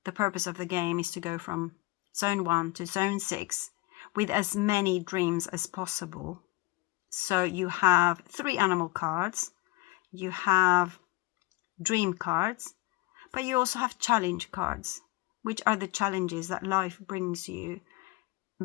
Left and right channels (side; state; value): right; quieter; 21.8 dB